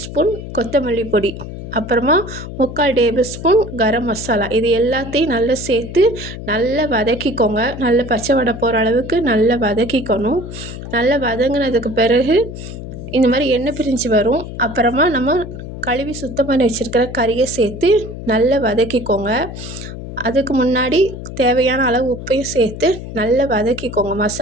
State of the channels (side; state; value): left; noise; hum, 10 dB below the sound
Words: ஸ்பூன் கொத்தமல்லி பொடி, அப்புறமா 3/4 டேபிள் ஸ்பூன் கரம் மசாலா. இது எல்லாத்தையும் நல்லா சேர்த்து நல்லா வதக்கிக்கோங்க. நல்ல பச்சை வடை போகிற அளவுக்கு நல்லா வதக்கிக்கணும். நல்லா வதங்கினதுக்கு பிறகு இந்த மாதிரி எண்ணெய் பிரிஞ்சு வரும். அப்புறமா நம்ம கழுவி சுத்தம் பண்ணி வச்சுருக்கிற கறியை சேர்த்து நல்லா வதக்கிக்கோங்க. அதுக்கு முன்னாடி தேவையான அளவு உப்பையும் சேர்த்து நல்லா வதக்கிக்கோங்க.